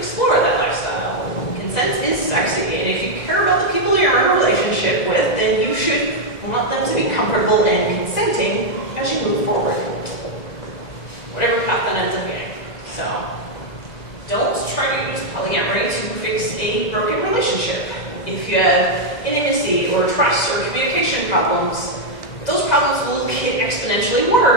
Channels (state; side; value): late; right; 1.9 ms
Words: that lifestyle. Consent is sexy, and if you care about the people you're in a relationship with, then you should want them to be comfortable and consenting as you move forward. Whatever path that ends up being. So, don't try to use polyamory to fix a broken relationship. If you have intimacy or trust or communication problems, those problems will get exponentially